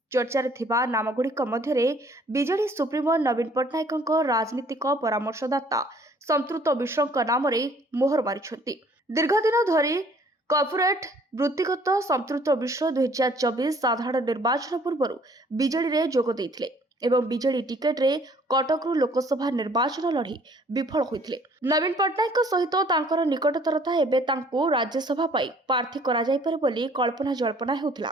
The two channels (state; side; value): normal; both; correlation 0.58